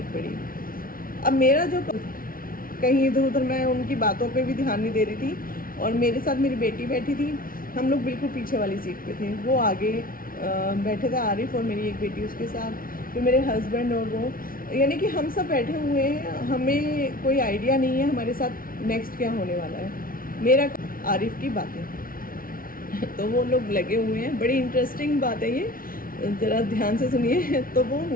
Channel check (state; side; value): late; right; 0.42 ms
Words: पड़ी। अब मेरा जो कहीं इधर उधर, मैं उनकी बातों पे भी ध्यान नहीं दे रही थी, और मेरे साथ मेरी बेटी बैठी थी, हम लोग बिल्कुल पीछे वाली सीट पे थे, वो आगे बैठे थे, आरिफ और मेरी एक बेटी उसके साथ, फिर मेरे हस्बैंड और वो, यानी कि हम सब बैठे हुए हैं, हमें कोई आइडिया नहीं है हमारे साथ नेक्स्ट क्या होने वाला है। मेरा आरिफ की बातें तो वो लोग लगे हुए हैं, बड़ी इंटरेस्टिंग बात है ये, ज़रा ध्यान से सुनिए। तो वो